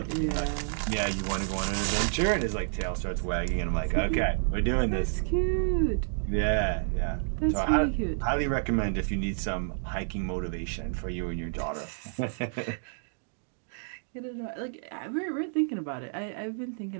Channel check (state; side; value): silent; left; digital silence